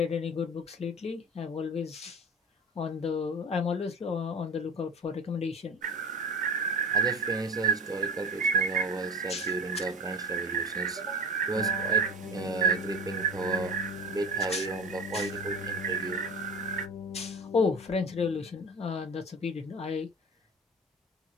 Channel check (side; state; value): both; normal; correlation 0.33